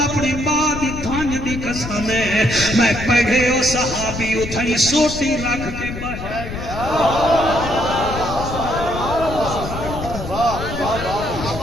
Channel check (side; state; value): left; noise; rumble, 8 dB below the sound